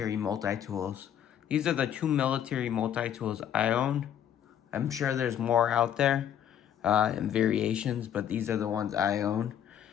multi-tools. These are the two military multi-tools I own. I'm sure there's more out there in variations, but these are the ones I own.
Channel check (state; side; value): quieter; right; 9.8 dB